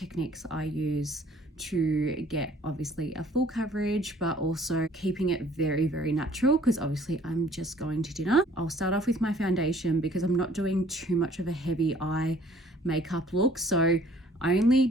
I use to get obviously a full coverage, but also keeping it very, very natural, because obviously I'm just going to dinner. I'll start off with my foundation because I'm not doing too much of a heavy eye makeup look. So I only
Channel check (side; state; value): both; normal; correlation 0.56